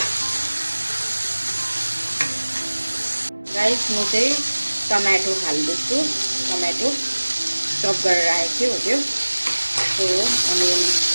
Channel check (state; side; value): inverted; both; correlation -1.00